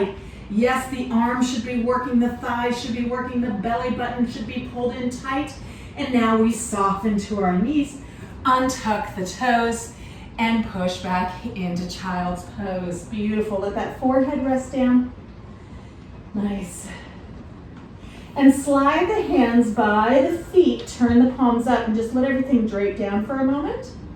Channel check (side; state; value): both; identical; correlation 1.00